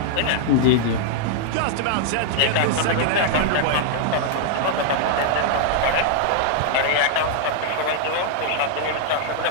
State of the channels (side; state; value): both; different; correlation 0.00